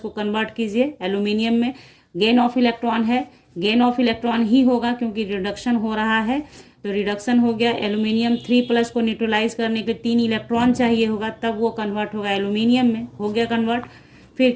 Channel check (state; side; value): identical; both; correlation 1.00